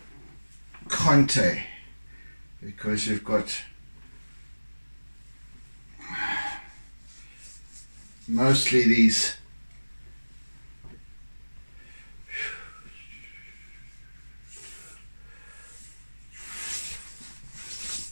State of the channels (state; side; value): inverted; both; correlation -1.00